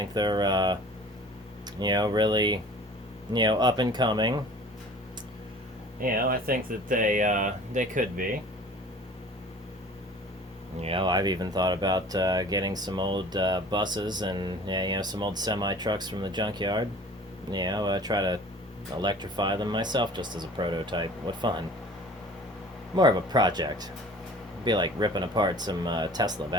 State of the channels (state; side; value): normal; both; correlation 0.45